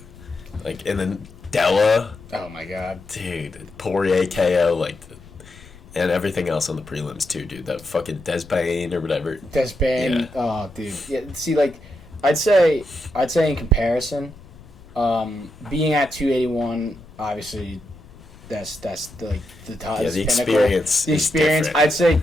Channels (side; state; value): left; noise; rumble, 21 dB below the sound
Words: Like, and then Della... Oh, my God. Dude, Poirier KO, like... And everything else on the prelims, too, dude. That fucking Despain or whatever. Despain, Yeah. oh, dude. Yeah, see, like, I'd say in comparison, being at 281, obviously, that's the top. Yeah, the experience The is experience, different. I'd say